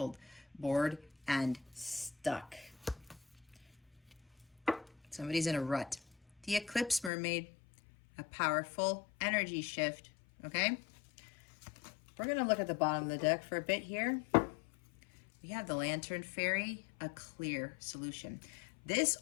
bored, and stuck. Somebody's in a rut. The Eclipse Mermaid, a powerful energy shift, okay? We're going to look at the bottom of the deck for a bit here. We have the Lantern Fairy, a clear solution. This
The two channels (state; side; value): drops out; right; at 7.1 s